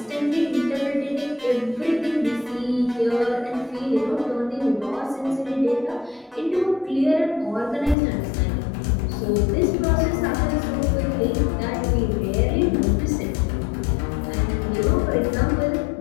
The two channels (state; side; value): drops out; right; at 8.0 s